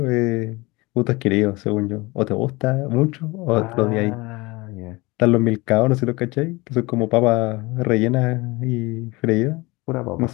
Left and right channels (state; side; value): quieter; right; 23.5 dB